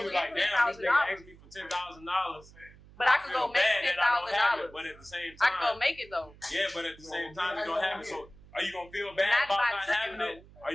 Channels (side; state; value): right; noise; hum, 22 dB below the sound